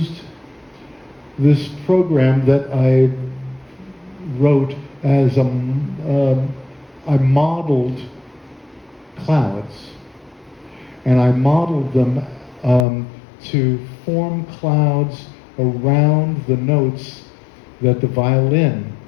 this program that I wrote as I modeled clouds. And I modeled them to form clouds around the notes that the violin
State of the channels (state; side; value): drops out; right; at 12.9 s